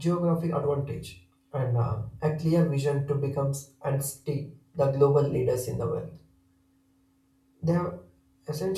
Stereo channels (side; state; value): both; identical; correlation 1.00